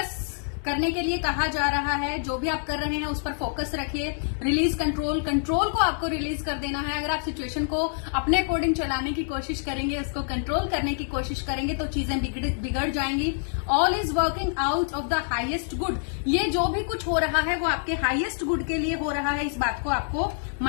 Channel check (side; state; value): right; silent; digital silence